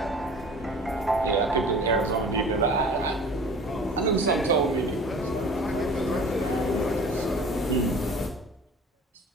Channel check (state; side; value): normal; both; correlation 0.44